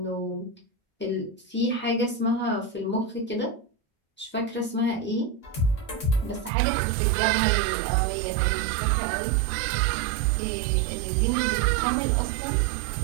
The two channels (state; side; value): drops out; left; at 6.5 s